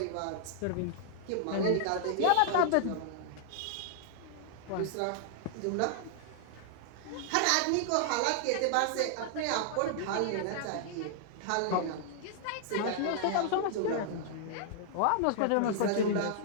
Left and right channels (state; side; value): different; both; correlation -0.01